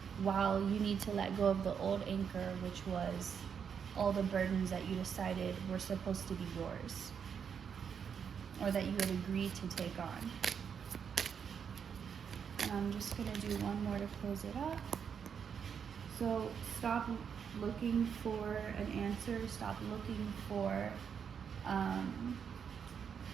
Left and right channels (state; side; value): quieter; left; 7.2 dB